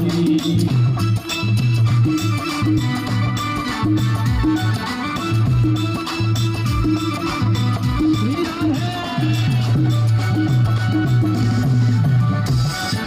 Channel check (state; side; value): identical; both; correlation 1.00